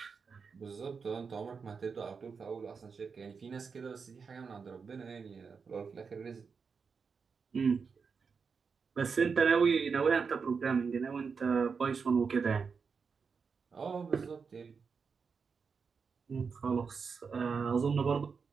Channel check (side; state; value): left; quieter; 5.5 dB